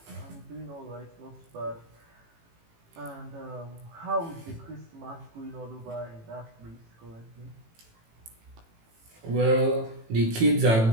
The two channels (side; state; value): left; late; 18 ms